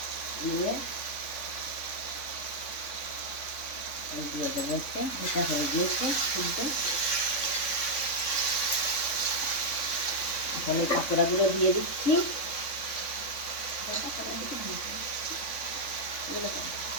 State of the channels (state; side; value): late; right; 3.5 ms